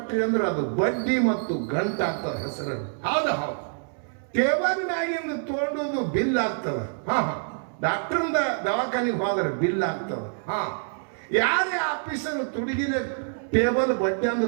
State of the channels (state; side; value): silent; left; 60 dB below the other